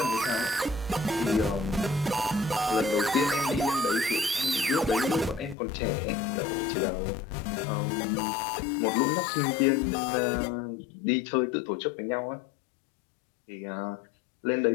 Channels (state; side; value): drops out; right; at 5.6 s